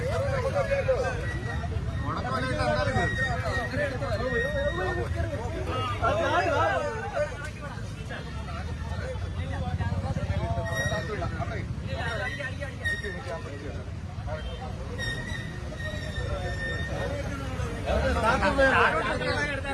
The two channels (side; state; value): both; identical; correlation 1.00